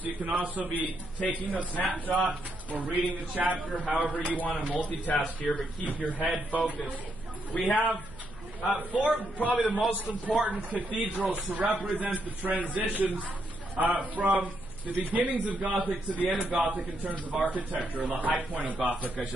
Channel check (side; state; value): left; noise; hum, 18 dB below the sound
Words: You can also be taking a snapshot or reading the chapter, however you want to multitask here, but keep your head focused. We have four, probably the most important cathedrals to represent the transitions from the beginnings of Gothic to the end of Gothic in terms of architecture, or the high point of Gothic, I